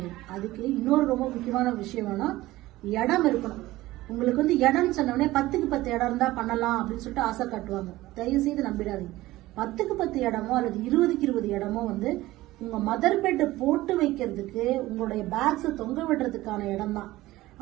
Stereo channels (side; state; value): left; quieter; 17.4 dB